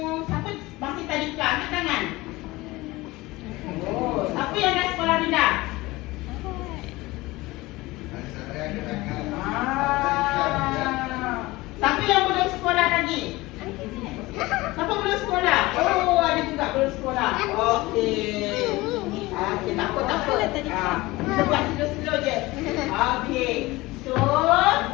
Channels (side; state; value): right; quieter; 20.4 dB